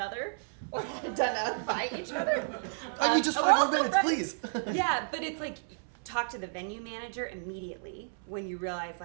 or done that by each other. I need just 5 more minutes, please. Yeah, but it's like talk to the venue manager immediately when you realize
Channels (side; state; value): left; silent; 57 dB below the other